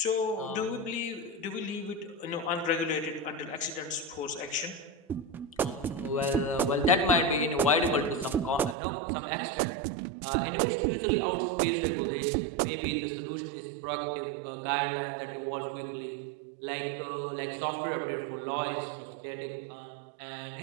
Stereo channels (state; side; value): drops out; left; at 8.8 s